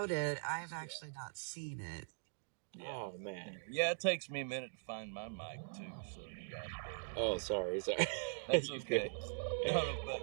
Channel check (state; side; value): silent; left; digital silence